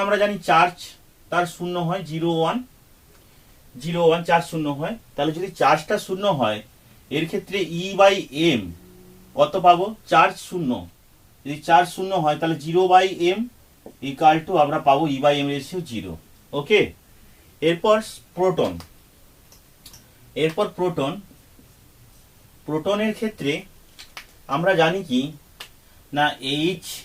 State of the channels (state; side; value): identical; both; correlation 1.00